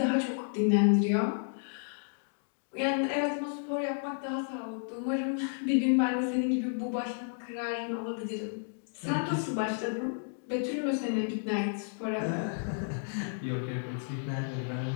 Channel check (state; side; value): silent; right; digital silence